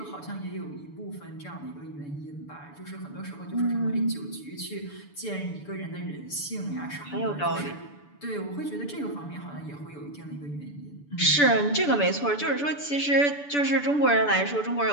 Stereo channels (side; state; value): right; late; 6.9 ms